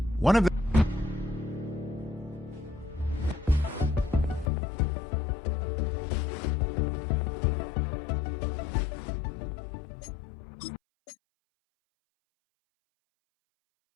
One of the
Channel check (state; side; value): drops out; right; at 4.5 s